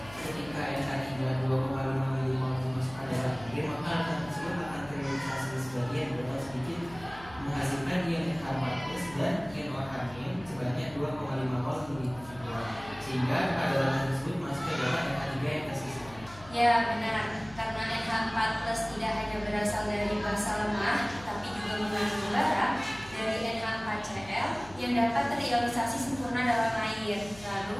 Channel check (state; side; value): noise; left; hum, 19 dB below the sound